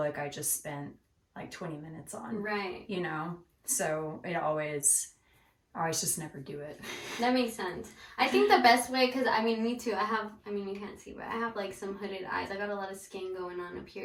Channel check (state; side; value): identical; both; correlation 1.00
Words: I just spent like 20 minutes on. Right. You know? So I always just never do it. That makes sense. I think the best way, because I mean, me too, you can't see, but I have like some hooded eyes. I got a lot of skin going on up